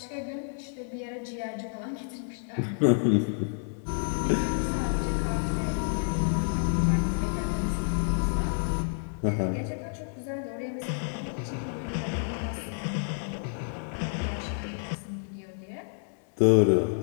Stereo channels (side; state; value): right; silent; digital silence